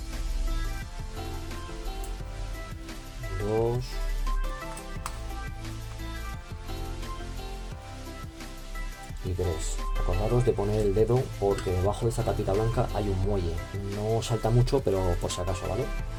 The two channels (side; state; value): both; identical; correlation 1.00